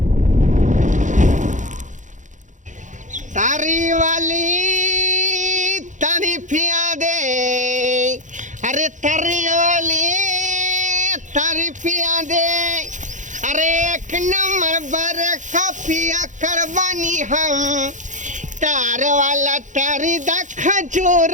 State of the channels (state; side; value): late; left; 0.36 ms